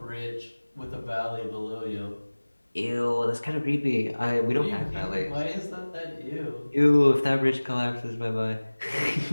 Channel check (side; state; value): both; inverted; correlation -1.00